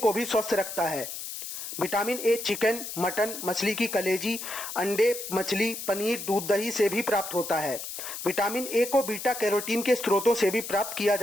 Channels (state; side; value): noise; left; hiss, 8 dB below the sound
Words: भी स्वस्थ रखता है। विटामिन ए चिकन, मटन, मछली की कलेजी, अंडे, मछली, पनीर, दूध, दही से भी प्राप्त होता है। विटामिन ए को बीटा कैरोटीन के स्रोतों से भी प्राप्त किया